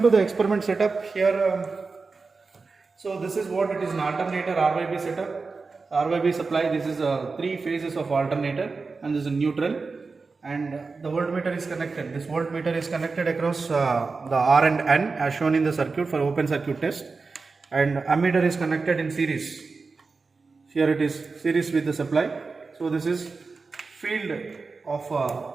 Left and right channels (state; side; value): quieter; left; 4.3 dB